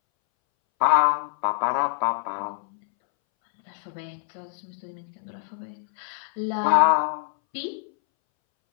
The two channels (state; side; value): silent; right; 62 dB below the other